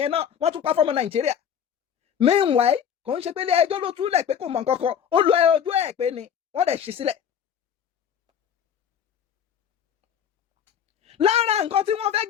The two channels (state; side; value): quieter; right; 8.5 dB